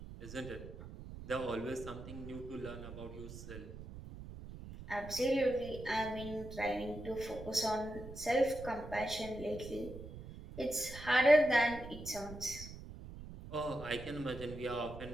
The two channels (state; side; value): noise; right; rumble, 12 dB below the sound